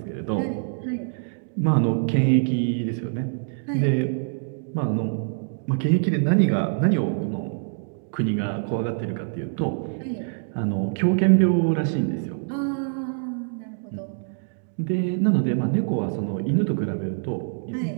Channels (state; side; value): silent; left; digital silence